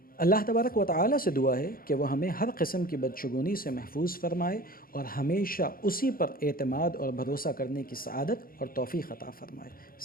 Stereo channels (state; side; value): late; right; 0.42 ms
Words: اللہ تبارک و تعالی سے دعا ہے کہ وہ ہمیں ہر قسم کی بدشگونی سے محفوظ فرمائے اور ہمیشہ اسی پر اعتماد اور بھروسہ کرنے کی سعادت اور توفیق عطا فرمائے۔